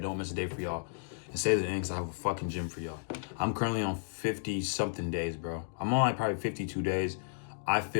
miss a day for y'all. And stay to the end because I have a fucking gym for y'all. I'm currently on 50 something days, bro. I'm on like probably 52 days. I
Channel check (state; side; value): silent; right; digital silence